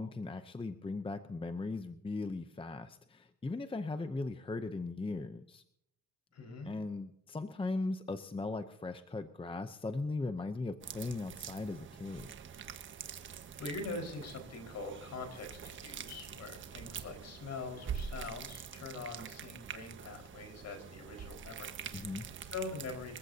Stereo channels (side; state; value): both; normal; correlation 0.62